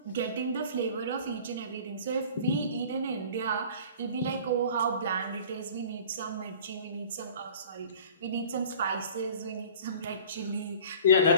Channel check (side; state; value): both; inverted; correlation -0.45